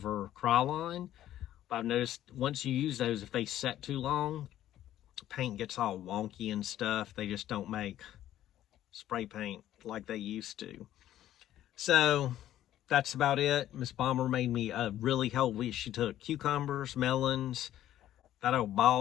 Krylon. But I've noticed once you use those, if they set too long, paint gets all wonky and stuff. They just don't make spray paint like they used to. So that's about it. Miss Bomber made me really healthy. She took cucumbers, melons, that old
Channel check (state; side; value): quieter; right; 12.5 dB